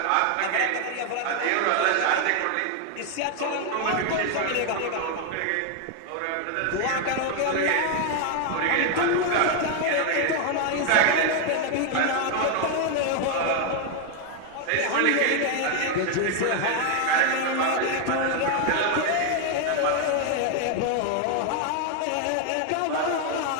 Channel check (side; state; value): both; different; correlation 0.00